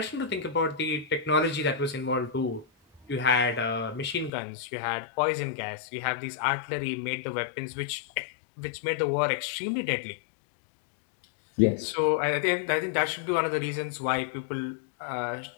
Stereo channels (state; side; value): drops out; right; at 4.3 s